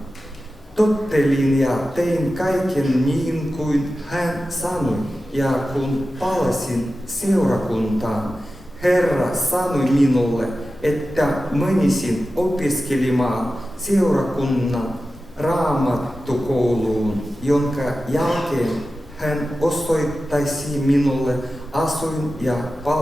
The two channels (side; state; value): both; normal; correlation 0.93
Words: Tottelin ja tein kaiken niin kuin hän sanoi, ja kun palasin seurakuntaan, Herra sanoi minulle, että menisin opiskelemaan seurakunnan raamattukouluun, jonka jälkeen hän osoittaisi minulle asuin- ja